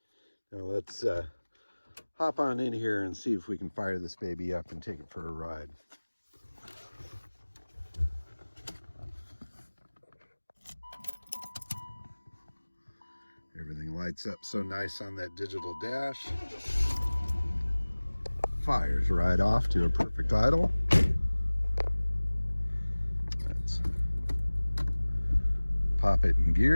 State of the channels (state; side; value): inverted; both; correlation -1.00